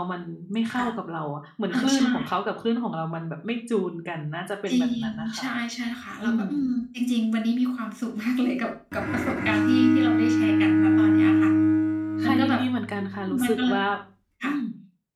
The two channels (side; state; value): both; identical; correlation 1.00